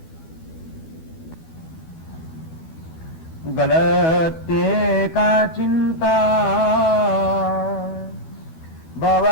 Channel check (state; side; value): late; right; 12 ms